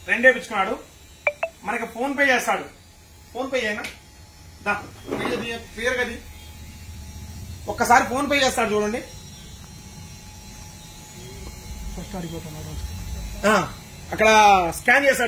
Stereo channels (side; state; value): both; identical; correlation 1.00